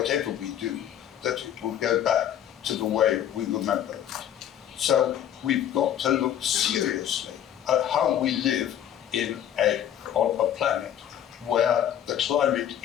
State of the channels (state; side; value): quieter; right; 10.5 dB